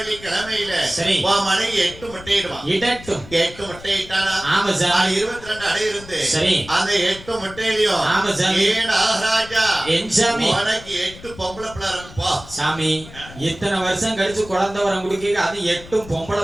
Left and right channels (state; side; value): noise; left; rumble, 17 dB below the sound